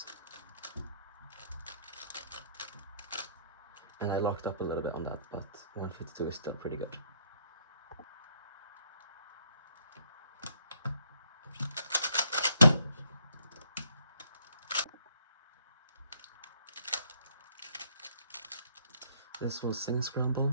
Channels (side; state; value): both; inverted; correlation -0.67